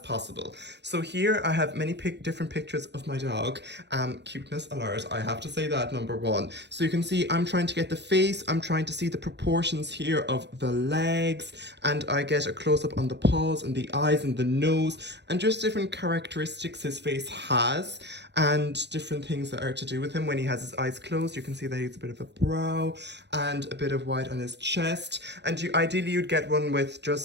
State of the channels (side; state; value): left; late; 0.50 ms